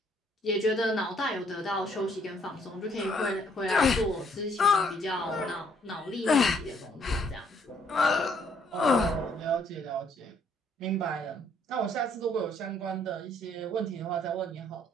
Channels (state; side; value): normal; both; correlation 0.66